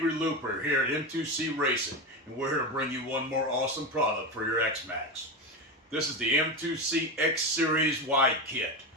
Looper here at M2C Racing, and we're here to bring you one more awesome product for your X-Max. This is the M2C X Series Wide Kit.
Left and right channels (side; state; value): both; normal; correlation 0.17